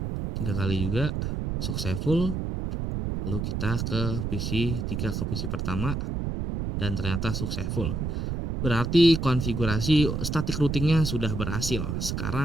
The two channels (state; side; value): noise; right; rumble, 2 dB below the sound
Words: 3 kali juga successful. Lalu kita ke PC 3 ke PC pertama dan ternyata successful. Berarti konfigurasi static routingnya sudah berhasil.